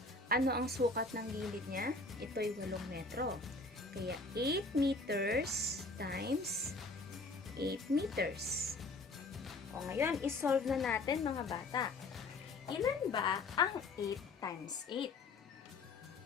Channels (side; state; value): right; quieter; 3.4 dB